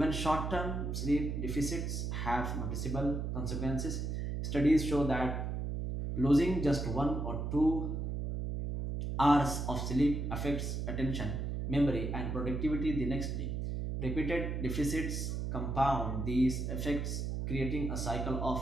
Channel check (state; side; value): noise; right; hum, 2 dB below the sound